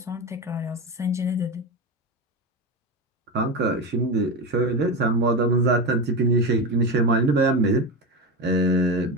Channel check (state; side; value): normal; both; correlation 0.18